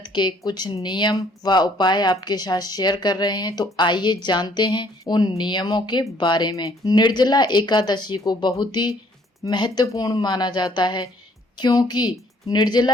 के कुछ नियम व उपाय आपके साथ शेयर कर रहे हैं। तो आइए जानते हैं उन नियमों के बारे में। निर्जला एकादशी को बहुत ही महत्वपूर्ण माना जाता है, क्योंकि निर्जला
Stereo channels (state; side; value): normal; both; correlation 0.62